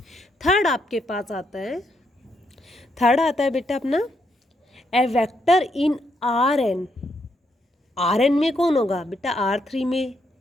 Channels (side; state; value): both; normal; correlation 0.77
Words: Third आपके पास आता है, third आता है बेटा अपना ए वेक्टर इन Rn। Rn में कौन होगा बेटा? R3 में